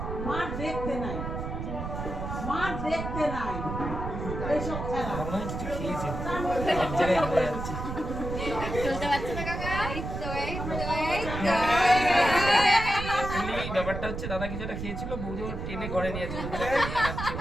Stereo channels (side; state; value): right; noise; rumble, 5 dB below the sound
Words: মার দেখতে নাই এইসব খেলা মনে হয় কিছু খেয়েছে এক জায়গায় হয়ে যাচ্ছে চলতে পারছে না কাকা এই ব্যাপারটা হচ্ছে দাদা কিছু একটা খেয়েছিল বৌদি ওর টেনে ঘরে নিয়ে যাচ্ছে